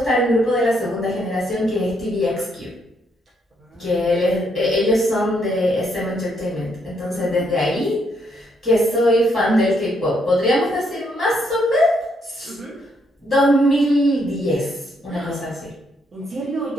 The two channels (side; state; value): both; normal; correlation 0.74